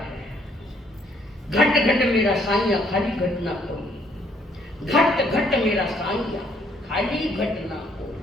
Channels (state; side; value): normal; both; correlation 0.66